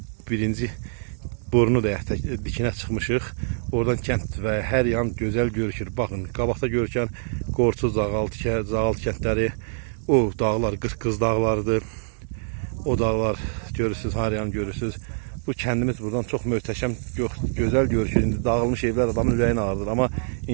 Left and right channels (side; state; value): left; silent; digital silence